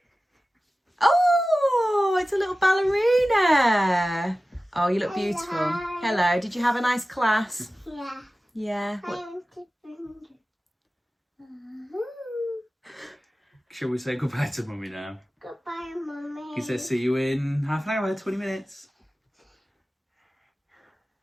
Oh, it's a little ballerina. Oh, you look beautiful. Hello. Did you have a nice class? Yeah. Yeah. Shall we say goodbye to Mummy now? Goodbye, Mummy. He says see you in half an hour, 20 minutes.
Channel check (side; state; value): both; normal; correlation 0.95